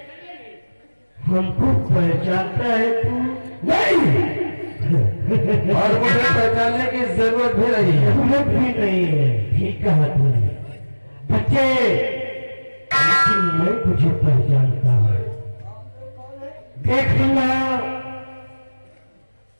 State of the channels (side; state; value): both; inverted; correlation -1.00